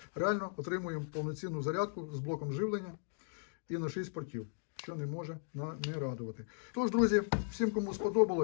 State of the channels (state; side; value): silent; right; digital silence